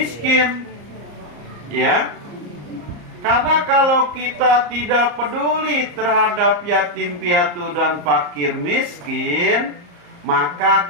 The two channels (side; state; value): left; late; 34 ms